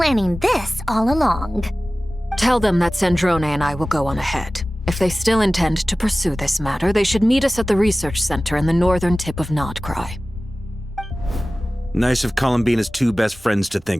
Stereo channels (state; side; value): normal; both; correlation 0.97